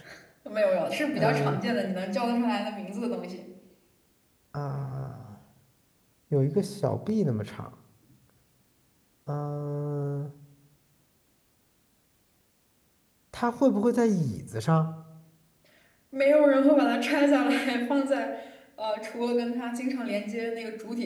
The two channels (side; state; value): both; identical; correlation 1.00